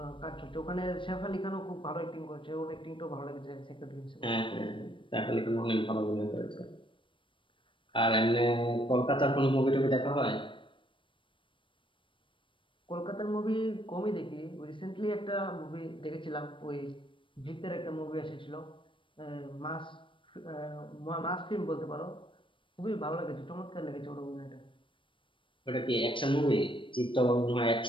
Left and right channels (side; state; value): right; late; 0.25 ms